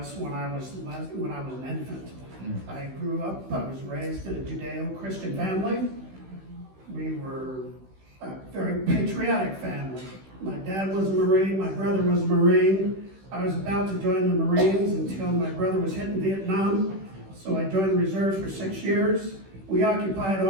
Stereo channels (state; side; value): late; left; 16 ms